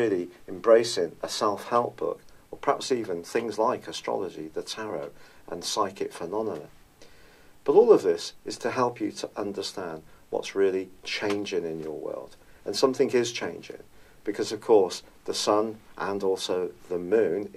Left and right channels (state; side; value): identical; both; correlation 1.00